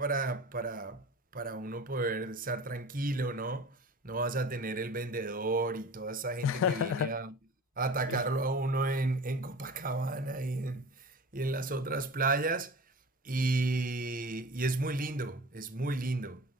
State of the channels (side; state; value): both; normal; correlation 0.37